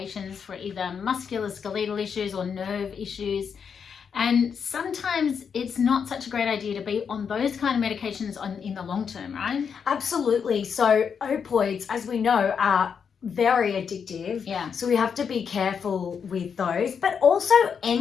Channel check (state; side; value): quieter; right; 6.7 dB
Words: for either musculoskeletal issues or nerve issues. And sometimes it's not such a great idea to be on those kind of medications in the long term, right? Absolutely. So opioids, as we know, are very addictive. Yeah. So we have to be careful with those, but also